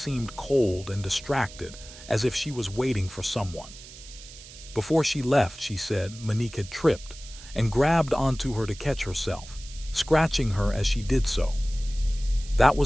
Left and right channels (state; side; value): noise; right; hiss, 17 dB below the sound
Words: cold and distracted, as if she was waiting for someone. Before she left, she said, Monique had tripped and grabbed onto her to catch herself, scratching her as she did so. That